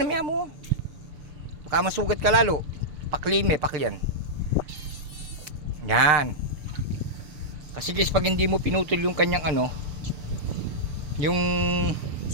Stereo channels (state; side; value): late; left; 6.6 ms